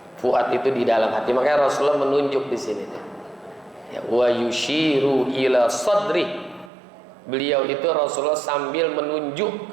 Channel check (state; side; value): drops out; left; at 6.7 s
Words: Fuad itu di dalam hati. Makanya Rasulullah menunjuk di sini. Ya, wa yushiru ila sadri. Beliau itu Rasulullah sambil menunjuk